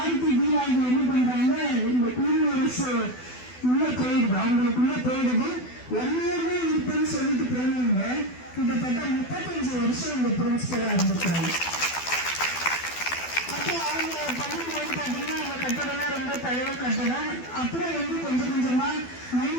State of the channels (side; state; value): right; late; 12 ms